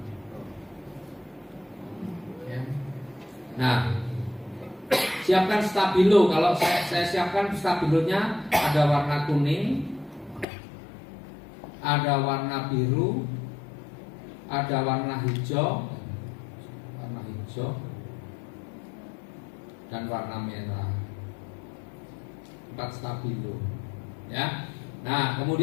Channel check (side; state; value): right; drops out; at 10.5 s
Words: Ya. Nah, siapkan stabilo. Kalau saya siapkan stabilonya ada warna kuning, ada warna biru, ada warna hijau, dan warna merah. 4 stabilo, ya. Nah,